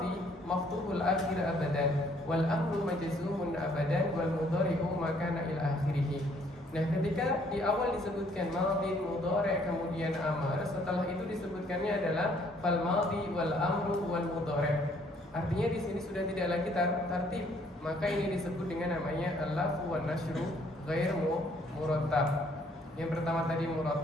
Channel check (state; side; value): normal; both; correlation 0.64